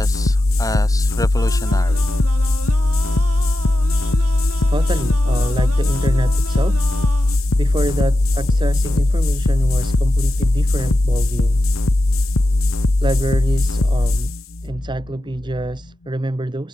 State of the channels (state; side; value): normal; both; correlation 0.91